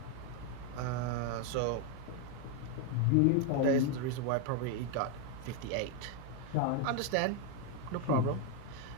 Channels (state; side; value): different; both; correlation 0.01